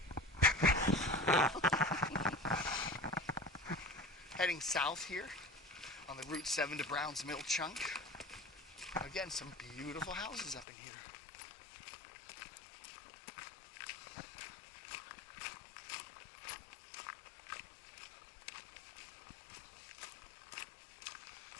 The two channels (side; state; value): right; drops out; at 10.7 s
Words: Heading south here on the Route 7 to Browns Mill chunk. Again, some beautiful houses up in here.